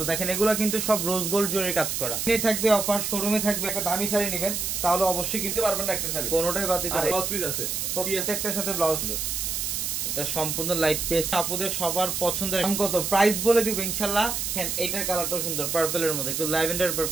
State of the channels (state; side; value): noise; right; hiss, 2 dB below the sound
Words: দেখেন এগুলা কিন্তু সব রোজ গোল্ড জরির কাজ করা। এখানে থাকবে অফার, শোরুমে থাকবে। একটা দামি শাড়ি নেবেন তাহলে অবশ্যই কিনতে পারবেন না একটা শাড়ি, কোনোটাই বাদ দিতে পারবেন। ব্লাউজ পিস আছে, প্রত্যেকটার সাথে ব্লাউজ সুন্দর। এটা সম্পূর্ণ লাইট পেস্ট, আপুদের সবার পছন্দের। দাম কত, প্রাইস বলে দিব ইনশাআল্লাহ। দেখেন এইটার কালারটাও সুন্দর, পার্পলের মধ্যে একটু ল্যাভেন্ডার